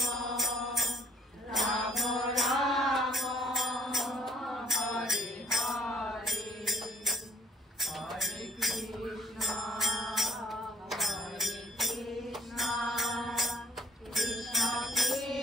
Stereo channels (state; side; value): normal; both; correlation 0.61